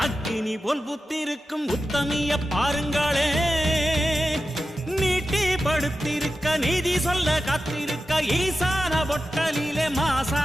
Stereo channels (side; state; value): both; normal; correlation 0.92